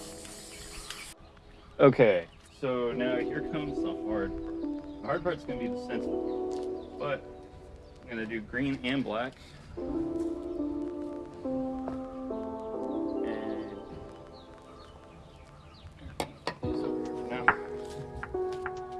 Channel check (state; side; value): identical; both; correlation 1.00